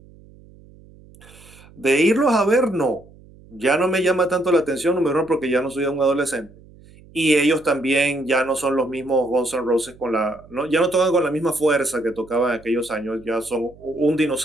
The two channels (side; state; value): right; noise; hum, 24 dB below the sound